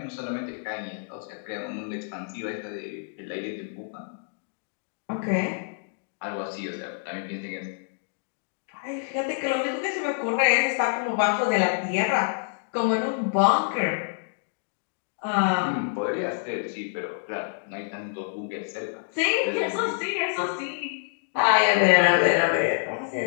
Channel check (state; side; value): silent; right; digital silence